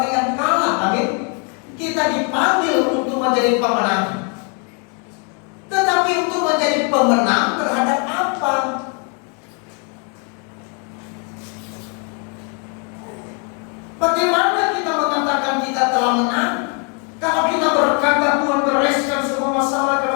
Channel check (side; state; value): right; quieter; 37.8 dB